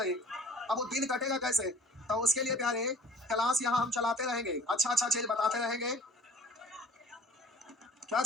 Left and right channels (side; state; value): both; normal; correlation 0.49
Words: अब वो दिन कटेगा कैसे? तो उसके लिए प्यारे क्लास यहाँ हम चलाते रहेंगे, अच्छा अच्छा चीज बताते रहेंगे। क्या